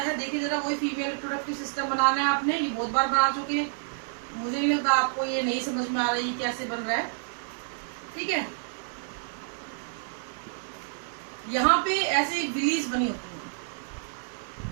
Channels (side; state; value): left; silent; digital silence